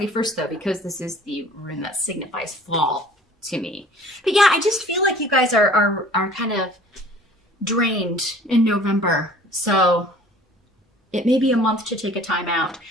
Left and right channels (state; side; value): normal; both; correlation 0.49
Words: though, because this is the rune that signifies fall to me. But yeah, I just feel like you guys are kind of drained in November. So it may be a month to take a time out.